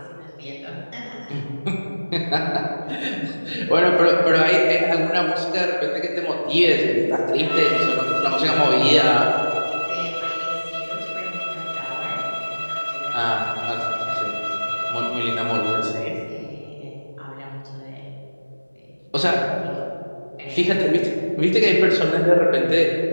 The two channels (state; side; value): inverted; both; correlation -1.00